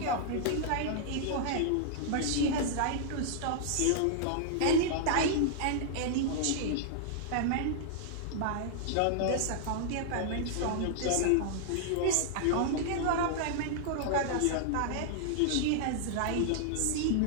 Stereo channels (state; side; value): different; both; correlation -0.01